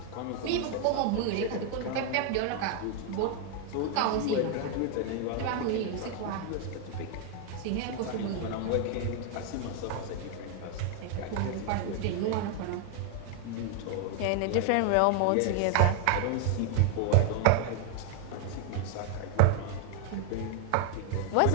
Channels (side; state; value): both; different; correlation 0.00